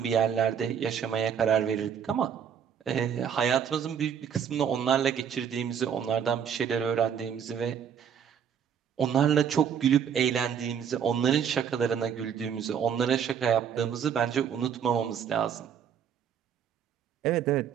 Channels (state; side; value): quieter; left; 8.0 dB